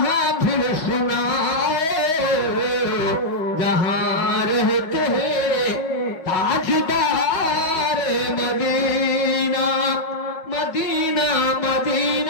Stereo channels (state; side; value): late; right; 5.5 ms